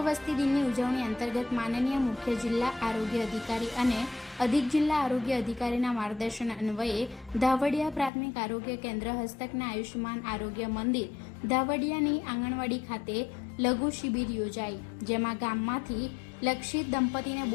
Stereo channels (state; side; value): drops out; right; at 8.1 s